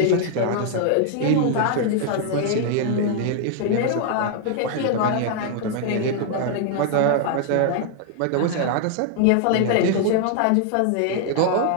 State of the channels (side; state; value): both; different; correlation 0.00